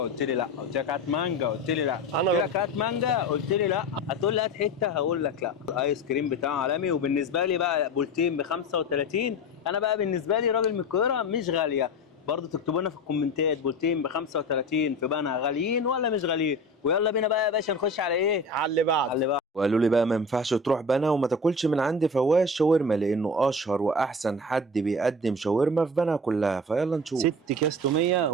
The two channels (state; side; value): normal; both; correlation 0.31